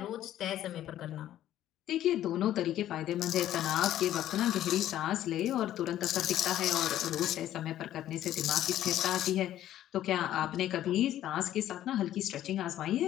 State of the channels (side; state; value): right; quieter; 12.5 dB